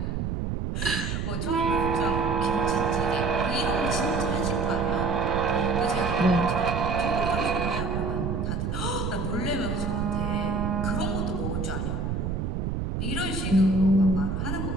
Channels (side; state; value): right; noise; rumble, 2 dB below the sound